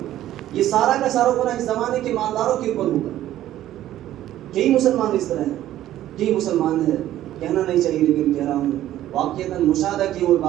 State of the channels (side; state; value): left; quieter; 13.1 dB